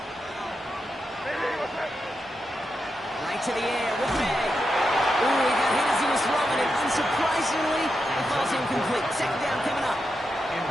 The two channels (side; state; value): both; normal; correlation 0.87